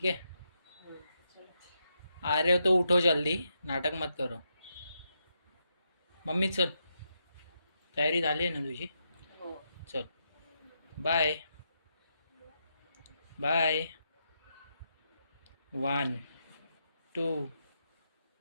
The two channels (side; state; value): both; inverted; correlation -0.82